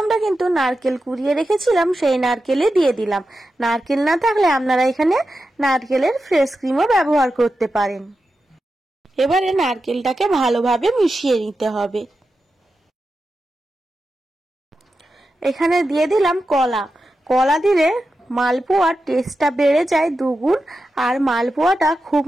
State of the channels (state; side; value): normal; both; correlation 0.90